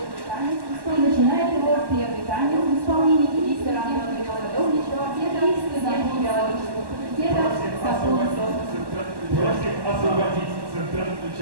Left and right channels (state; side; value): late; left; 1.1 ms